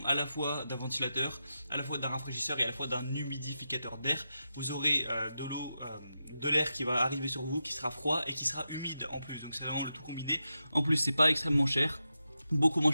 à la fois d'un ventilateur, à la fois d'un rafraîchisseur et à la fois d'un humidificateur d'air. Vous aurez de l'eau, de l'air qui va arriver sur vous, qui sera froid et qui sera humide en plus. Donc c'est vraiment le tout combiné. En plus, c'est pas extrêmement cher, beaucoup moins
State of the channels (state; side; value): inverted; both; correlation -0.89